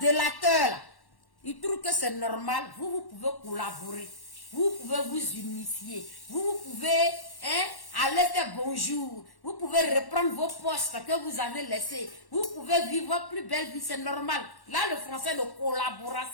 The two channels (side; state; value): right; late; 1.1 ms